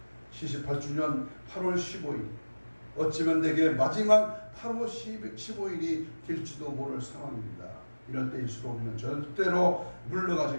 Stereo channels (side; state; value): both; inverted; correlation -1.00